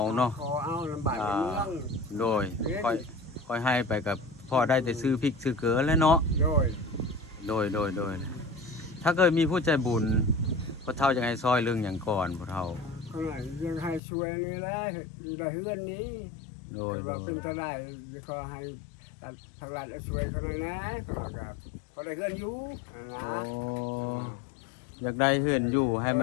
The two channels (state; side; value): drops out; right; at 14.0 s